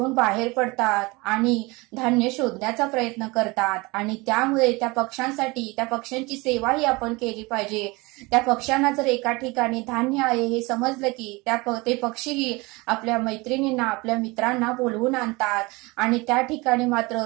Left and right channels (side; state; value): left; quieter; 24.4 dB